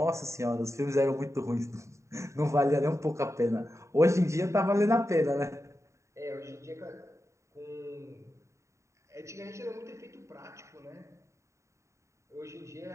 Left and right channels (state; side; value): late; left; 0.14 ms